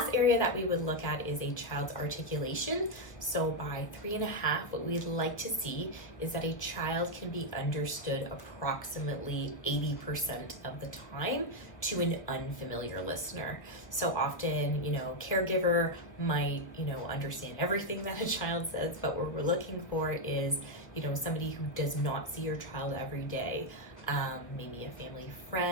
area that we would look at is a child's articulation. So by 3.5, what we'd like to see is that a child can be understood approximately 80% of the time to an unfamiliar listener. So often, caregiver might, understand everything that a child says, but what we're looking for is, somebody who does not see your child every day. Maybe a family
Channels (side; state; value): right; late; 1.0 ms